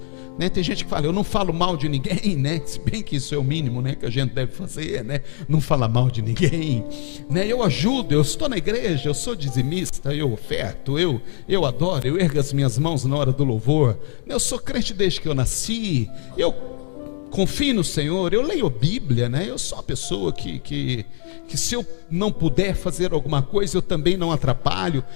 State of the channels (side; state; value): right; silent; 64 dB below the other